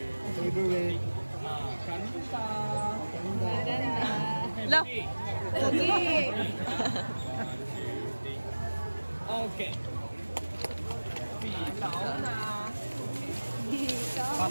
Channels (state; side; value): inverted; both; correlation -1.00